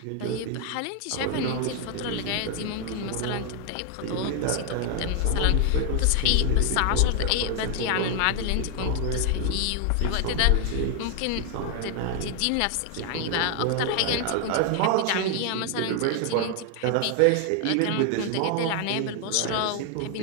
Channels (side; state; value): both; different; correlation 0.00